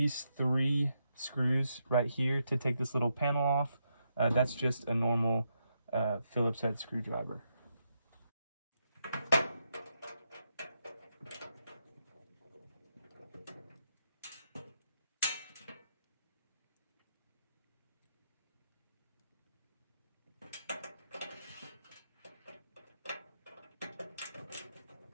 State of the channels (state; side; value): inverted; both; correlation -0.82